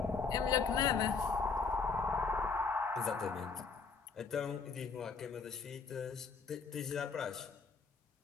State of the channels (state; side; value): quieter; right; 5.0 dB